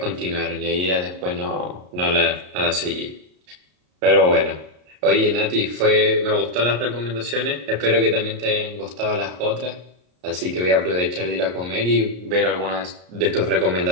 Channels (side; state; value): left; late; 33 ms